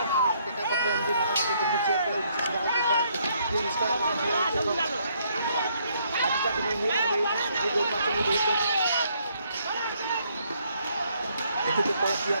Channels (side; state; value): both; inverted; correlation -0.69